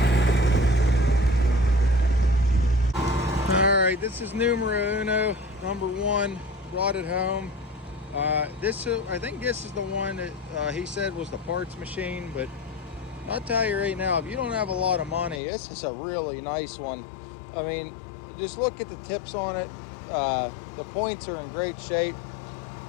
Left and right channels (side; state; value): right; drops out; at 15.4 s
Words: All right, this is numero uno, number one, brought it home. I think this is the one that he said was the parts machine, but I'll tell you right now, if you don't have a lot of money, this is a really nice one. I mean, just look at the tips on it. The points are in great shape.